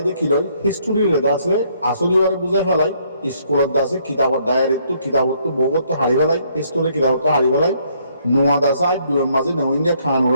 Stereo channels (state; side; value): inverted; both; correlation -0.68